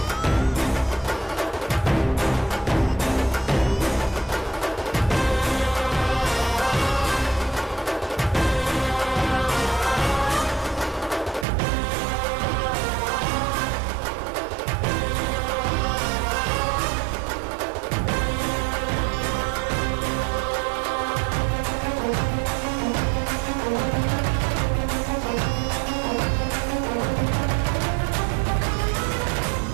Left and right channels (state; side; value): drops out; left; at 11.5 s